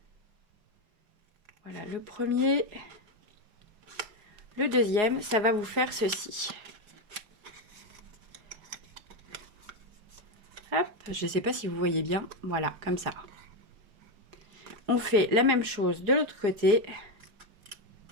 Voilà, le premier. Le deuxième, ça va vous faire ceci. Hop, je ne sais pas si vous voyez bien. Voilà, comme ça. On fait la même chose de l'autre côté.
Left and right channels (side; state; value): left; late; 4.8 ms